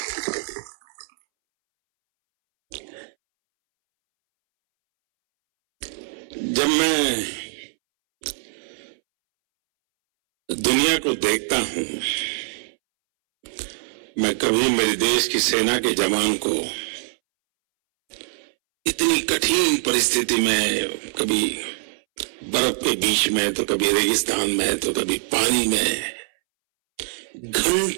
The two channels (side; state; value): left; silent; 63 dB below the other